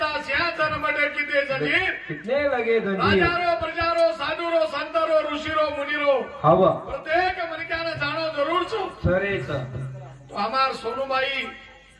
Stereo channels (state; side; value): identical; both; correlation 1.00